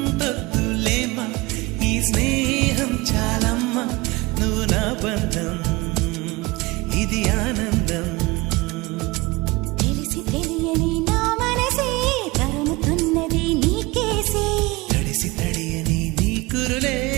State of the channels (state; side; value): quieter; left; 23.0 dB